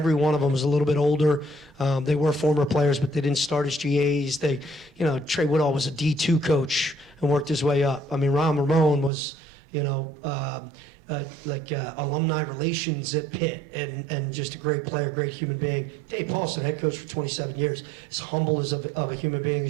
one of them is a little bit older. They were former players, but they didn't start as GAs. Trey Woodall was a D2 coach and worked his way up. I mean, Ron Ramon was, alumni relations at Pitt and just a great player, great human being. Dave Paulson, head coach for 27 years, as humble as of a human being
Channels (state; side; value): drops out; left; at 9.1 s